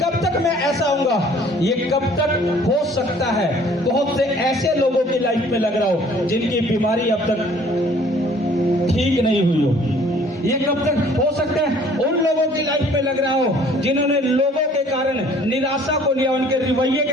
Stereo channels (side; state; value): both; normal; correlation 0.55